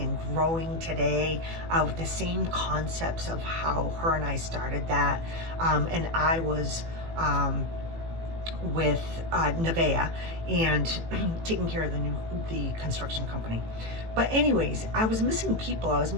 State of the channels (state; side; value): late; left; 18 ms